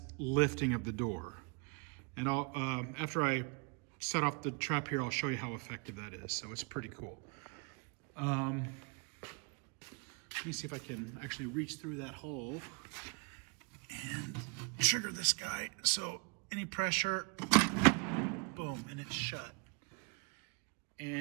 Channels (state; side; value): quieter; left; 32.9 dB